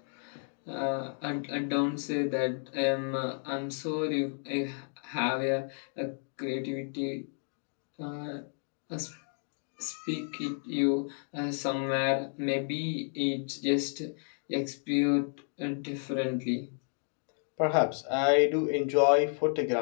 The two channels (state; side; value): silent; right; 57 dB below the other